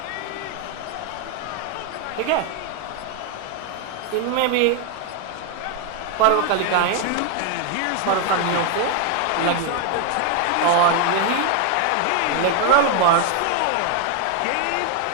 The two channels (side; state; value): both; different; correlation 0.01